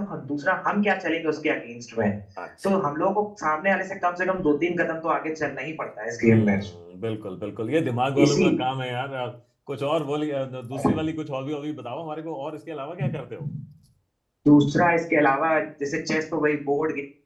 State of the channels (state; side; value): identical; both; correlation 1.00